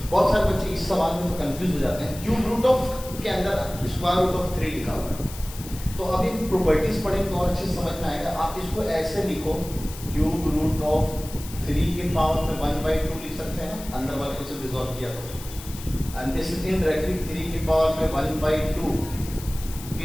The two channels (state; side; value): noise; left; hiss, 14 dB below the sound